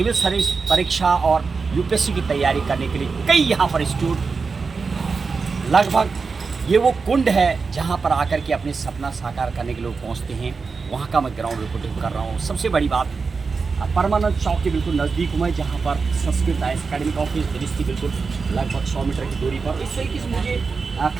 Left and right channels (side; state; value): left; quieter; 4.8 dB